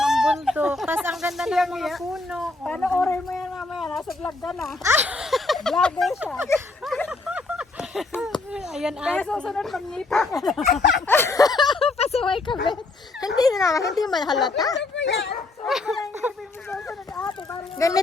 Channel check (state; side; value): quieter; right; 3.3 dB